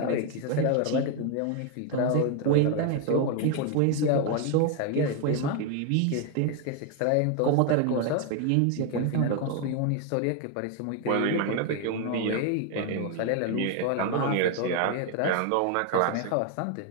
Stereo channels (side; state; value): both; different; correlation 0.01